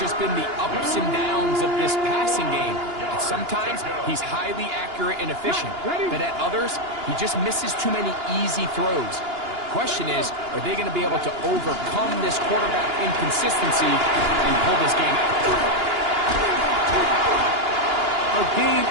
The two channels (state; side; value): late; left; 2.9 ms